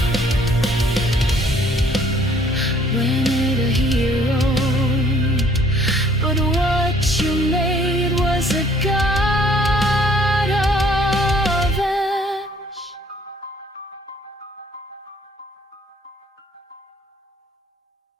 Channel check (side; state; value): both; normal; correlation 0.60